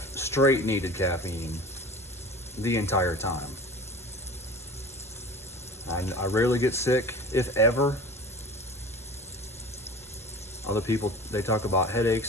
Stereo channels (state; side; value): normal; both; correlation 0.38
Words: needed caffeine the entire time. I rarely get sick, if ever. Other people, they talk about